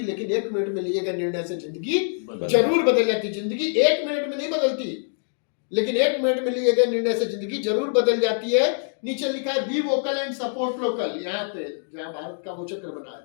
लेकिन 1 मिनट में लिए गए निर्णय से जिंदगी जरूर बदल जाती। जिंदगी 1 मिनट में नहीं बदलती, लेकिन 1 मिनट में लिए गए निर्णय से जिंदगी जरूर बदल जाती है। नीचे लिखा है be vocal and support local. यहाँ पे जहाँ भारत का वो चक्र बना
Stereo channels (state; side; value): silent; right; digital silence